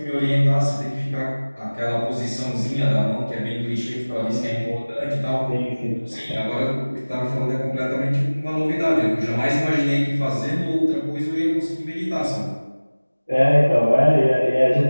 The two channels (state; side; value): inverted; both; correlation -1.00